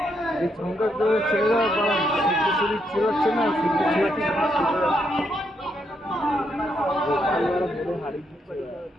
এই সংখ্যা করে ছেলেরা ছেড়াচ্ছে না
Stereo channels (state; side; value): normal; both; correlation 0.78